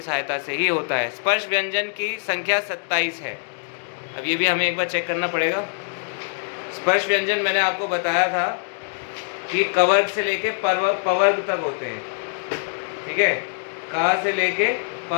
सहायता से ही होता है। स्पर्श व्यंजन की संख्या 27 है। अब ये भी हमें एक बार चेक करना पड़ेगा। स्पर्श व्यंजन मैंने आपको बताया था कि कवर्ग से लेके पवर्ग तक होते हैं। ठीक है, का से लेके प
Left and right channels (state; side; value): silent; right; digital silence